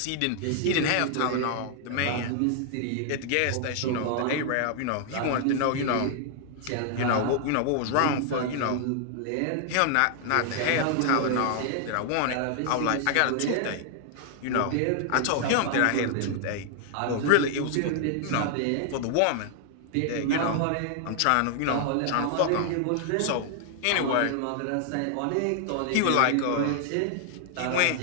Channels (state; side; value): different; both; correlation 0.00